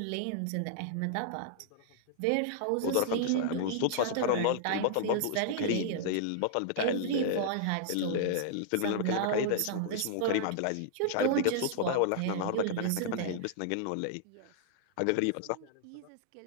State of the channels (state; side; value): different; both; correlation -0.01